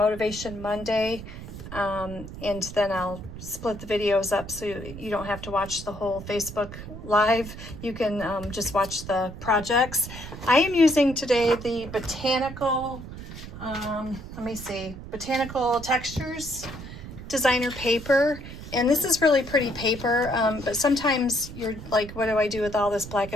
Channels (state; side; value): noise; right; rumble, 12 dB below the sound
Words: Monday. And then I'll split the videos up so you don't have to watch the whole Facebook Live. You can just watch the projects. I am using today the Botanical, Botanical Textures designer paper. And this is really pretty paper, but sometimes you're like, what do I do with all this black